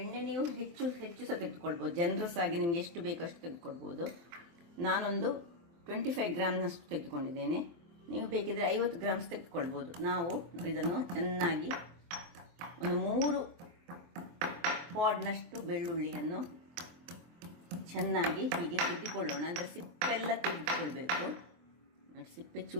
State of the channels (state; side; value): late; left; 24 ms